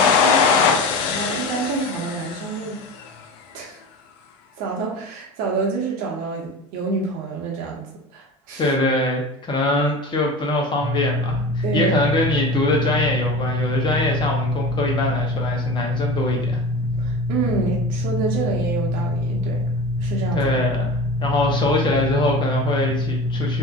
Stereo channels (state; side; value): normal; both; correlation 0.33